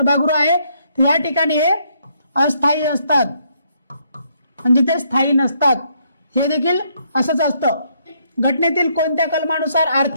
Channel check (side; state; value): both; inverted; correlation -0.72